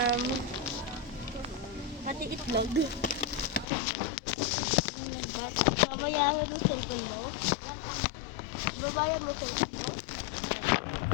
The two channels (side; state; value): right; drops out; at 3.7 s